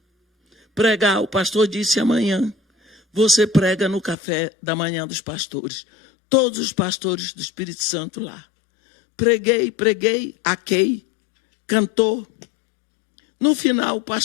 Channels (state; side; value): drops out; right; at 4.2 s